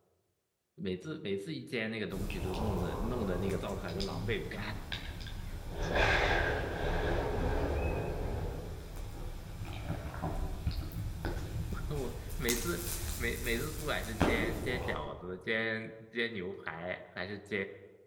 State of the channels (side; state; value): both; identical; correlation 1.00